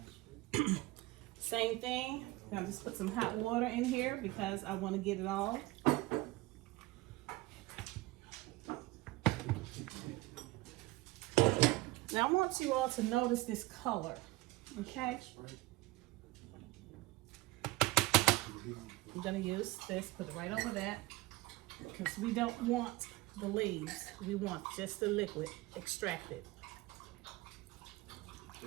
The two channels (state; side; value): quieter; left; 19.8 dB